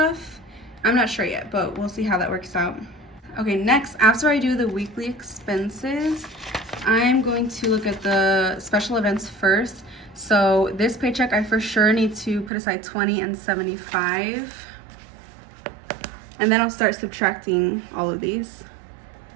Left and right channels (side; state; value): left; drops out; at 12.5 s